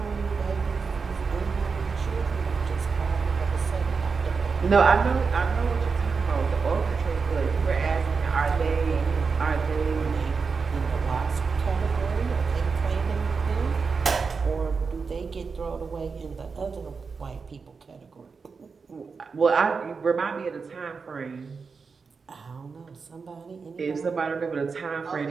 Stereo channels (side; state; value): left; quieter; 5.0 dB